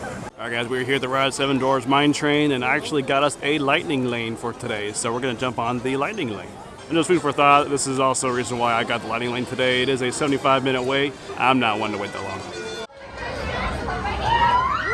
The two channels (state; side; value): identical; both; correlation 1.00